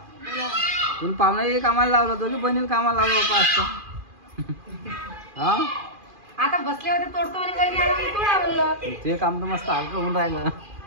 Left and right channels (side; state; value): left; late; 2.4 ms